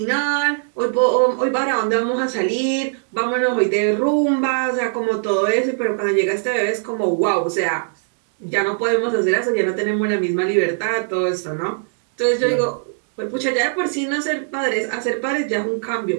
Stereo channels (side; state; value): left; silent; digital silence